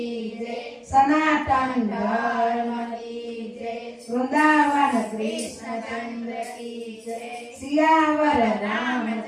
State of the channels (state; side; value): identical; both; correlation 1.00